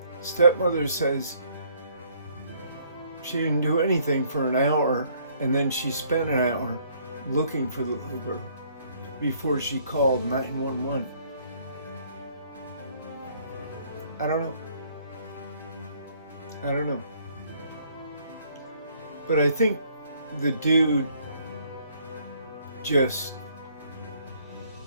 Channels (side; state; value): both; inverted; correlation -0.64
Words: Stepmother says she didn't do anything for an hour, and then she spent an hour looking for the little girl before she called 911. I don't know. But I think the dude